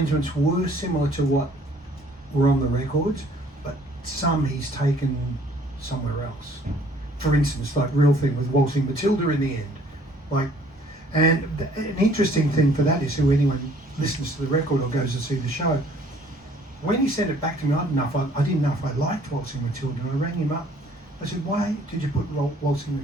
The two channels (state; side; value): normal; both; correlation 0.58